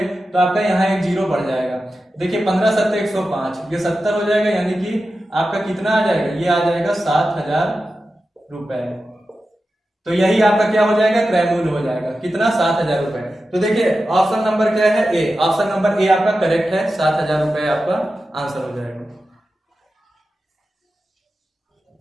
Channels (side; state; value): both; normal; correlation 0.92